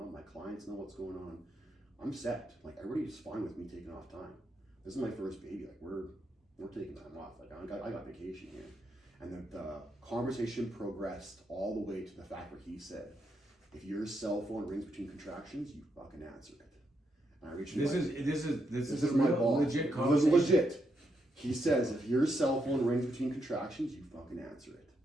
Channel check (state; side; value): normal; both; correlation 0.80